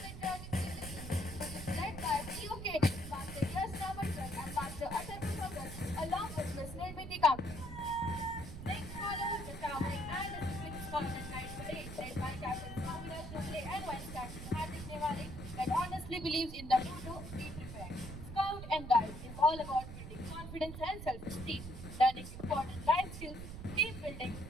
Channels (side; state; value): right; noise; rumble, 9 dB below the sound